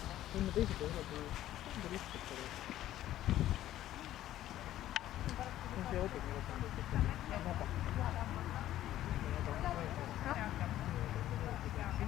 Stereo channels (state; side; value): quieter; right; 13.2 dB